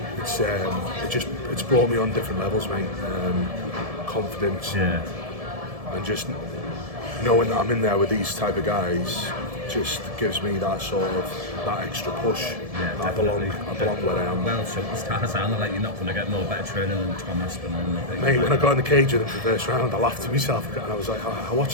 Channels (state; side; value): late; left; 1.7 ms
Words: It's brought me on different levels, mate. Confidence, and just knowing that I'm in there with these type of guys just gives me that extra push. Yeah, I belong where I am. Well, superstars are like, you're not going to get no better training than Tom Aspinall. Mate, when I got in the cage with him for the first round, I laughed to myself and I was like, I